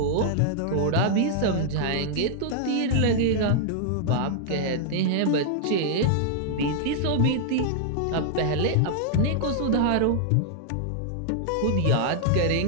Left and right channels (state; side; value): different; both; correlation -0.01